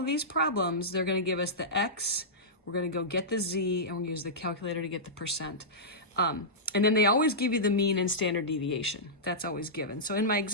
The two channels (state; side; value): normal; both; correlation -0.15